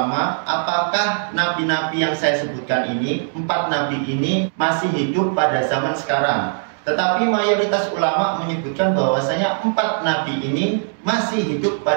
apakah nabi-nabi yang saya sebutkan ini, 4 nabi ini masih hidup pada zaman sekarang. Tetapi mayoritas ulama menyebutkan bahwasanya 4 nabi ini masih hidup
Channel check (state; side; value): silent; left; digital silence